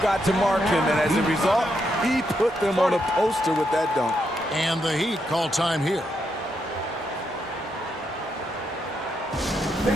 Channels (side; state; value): both; normal; correlation 0.80